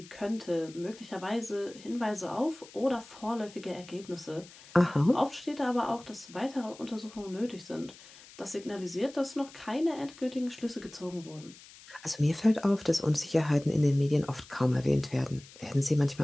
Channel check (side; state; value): left; noise; hiss, 20 dB below the sound